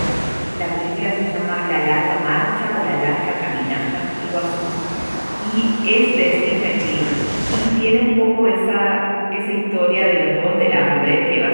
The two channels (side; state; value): both; inverted; correlation -1.00